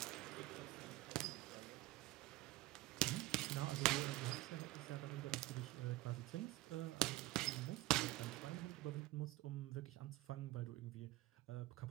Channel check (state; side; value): quieter; left; 18.1 dB